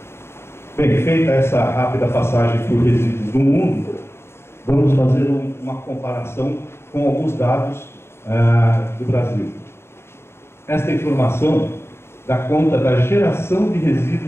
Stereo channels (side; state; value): right; late; 0.12 ms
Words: Bem, feita essa rápida passagem por resíduos do mundo, vamos fazer uma comparação com alguns dados do Brasil. Esta informação dá conta da geração de